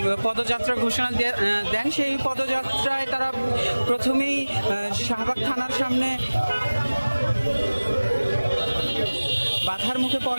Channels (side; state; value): both; inverted; correlation -1.00